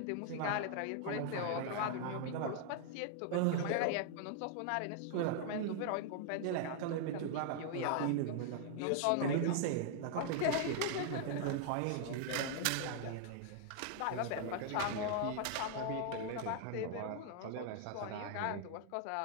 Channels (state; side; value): different; both; correlation 0.00